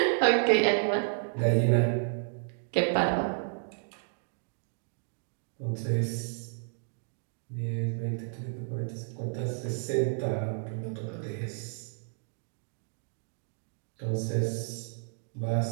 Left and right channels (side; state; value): left; silent; digital silence